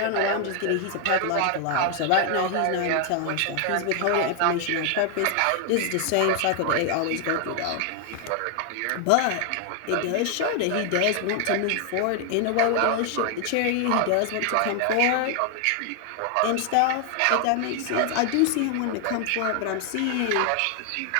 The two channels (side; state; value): both; different; correlation 0.00